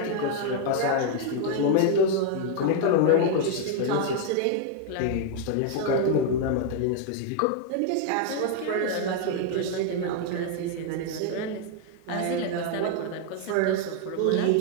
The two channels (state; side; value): different; both; correlation 0.00